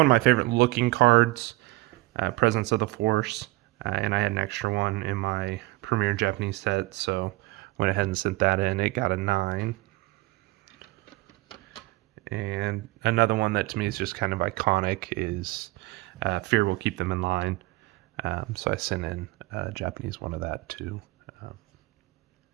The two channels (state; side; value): quieter; left; 20.9 dB